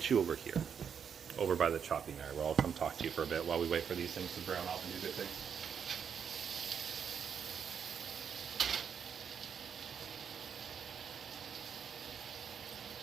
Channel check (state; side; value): quieter; left; 7.3 dB